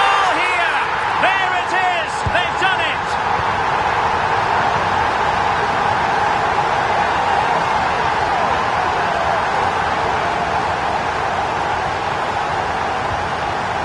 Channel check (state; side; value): identical; both; correlation 1.00